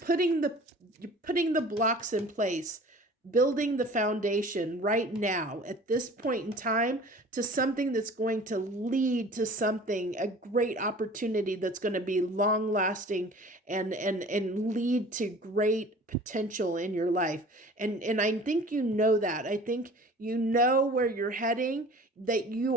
the blocks in place, building the foundation right now at this point in time to something that's going to lead to something, a great opportunity that's going to be long lasting and lead to great potential in your life. And I think you know that. I think you know where you're heading, that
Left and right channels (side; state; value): both; normal; correlation 0.45